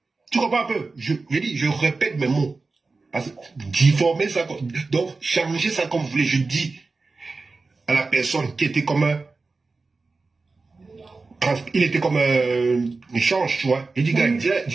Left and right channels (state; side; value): quieter; left; 3.9 dB